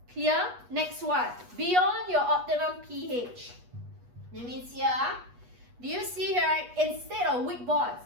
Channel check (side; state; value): left; late; 8.2 ms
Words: Clear? Next one. Beyond your optimum pH. That means here, do you see here, right? Instead of weak bonds,